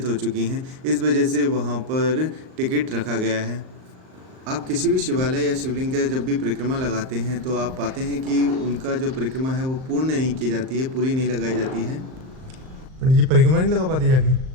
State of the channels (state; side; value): late; left; 38 ms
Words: हो चुकी हैं। इस वजह से वहाँ पर टिकट रखा गया है। आप किसी भी शिवालय या शिवलिंग का जब भी परिक्रमा लगाते हैं तो आप पाते हैं कि उनका जो परिक्रमा है वो पूर्ण नहीं की जाती है, पूरी नहीं लगाई जाती है। पंडित जी परिक्रमा नहीं लगा पाते जाके?